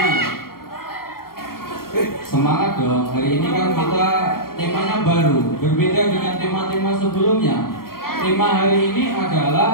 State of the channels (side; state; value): right; late; 0.93 ms